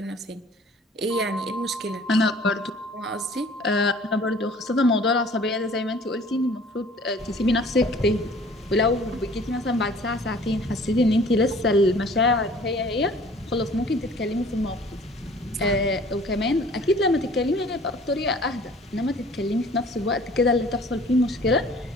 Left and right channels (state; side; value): normal; both; correlation 0.51